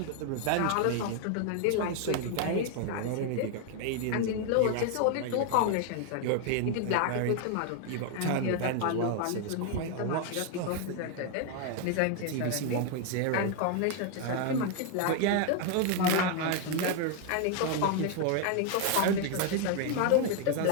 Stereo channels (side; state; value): both; different; correlation 0.00